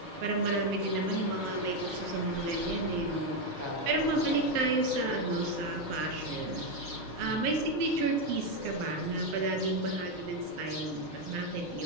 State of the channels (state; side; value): late; left; 6.5 ms